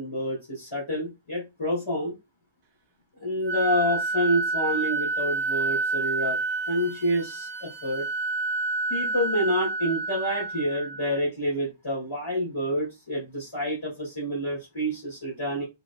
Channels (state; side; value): inverted; both; correlation -0.31